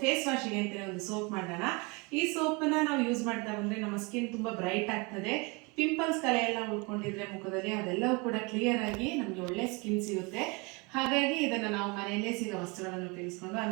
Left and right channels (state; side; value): quieter; left; 28.5 dB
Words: ಫೇಸ್ ವಾಶಿಗೆ ಅಂತಲೇ ಒಂದು ಸೋಪ್ ಮಾಡೋಣ. ಈ ಸೋಪನ್ನ ನಾವು ಯೂಸ್ ಮಾಡ್ತಾ ಬಂದರೆ ನಮ್ಮ ಸ್ಕಿನ್ ತುಂಬ ಬ್ರೈಟ್ ಆಗ್ತದೆ. ಪಿಂಪಲ್ಸ್ ಕಲೆ ಎಲ್ಲ ಉಳ್ಕೊಂಡಿದ್ರೆ ಮುಖದಲ್ಲಿ ಅದೆಲ್ಲವೂ ಕೂಡ ಕ್ಲಿಯರ್ ಆಗಿ ನಮಗೆ ಒಳ್ಳೆ ಸ್ಕಿನ್ ಸಿಗುತ್ತೆ. ಹಾಗಾಗಿ ಇದನ್ನು ನಾವು ಮನೆಯಲ್ಲೇ ಸಿಗೋ ವಸ್ತುಗಳನ್ನು ಉಪಯೋಗಿಸ್ಕೊಂಡು,